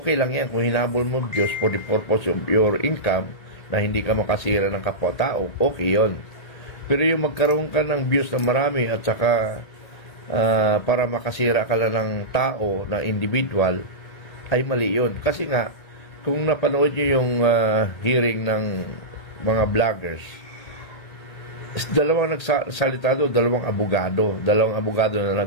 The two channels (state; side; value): late; right; 1.8 ms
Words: lang yan kung hinahabol mo views for the purpose of your income na hindi ka makasira ng kapwa-tao, okay yon. Pero yung magkaroon ka ng views na marami at saka para makasira ka lang ng tao na individual, ay mali yun. Kasi nga, kung napanood nyo yung hearing ng mga vloggers, dalawang nagsalita doon, dalawang abogado na